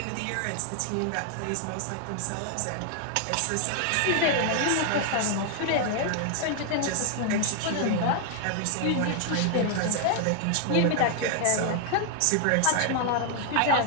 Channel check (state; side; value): different; both; correlation 0.00